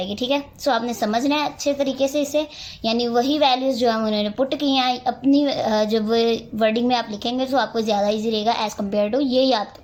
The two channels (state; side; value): identical; both; correlation 1.00